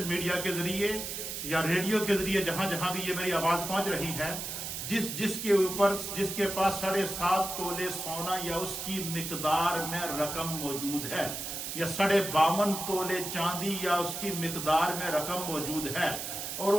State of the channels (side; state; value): right; noise; hiss, 5 dB below the sound